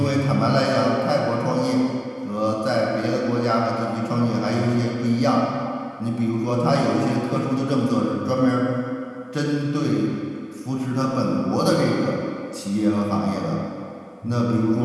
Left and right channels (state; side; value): identical; both; correlation 1.00